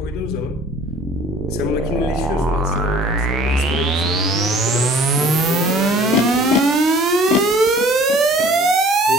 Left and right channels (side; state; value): both; normal; correlation 0.51